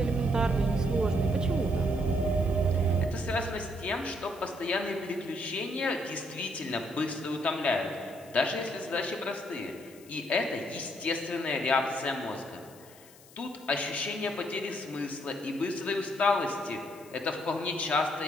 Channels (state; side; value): noise; left; hiss, 23 dB below the sound